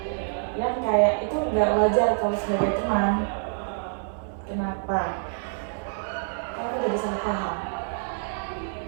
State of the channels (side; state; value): left; silent; 60 dB below the other